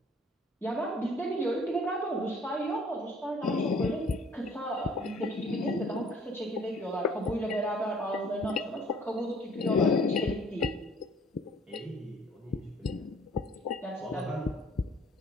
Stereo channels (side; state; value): both; normal; correlation 0.56